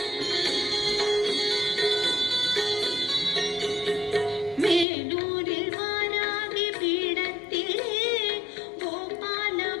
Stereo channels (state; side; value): drops out; right; at 4.9 s